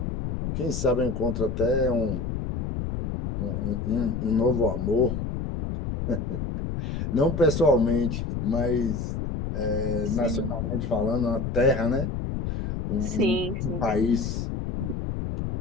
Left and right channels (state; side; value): noise; left; rumble, 3 dB below the sound